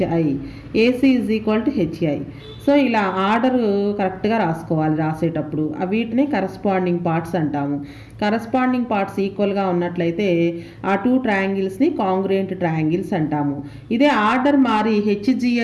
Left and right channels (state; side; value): identical; both; correlation 1.00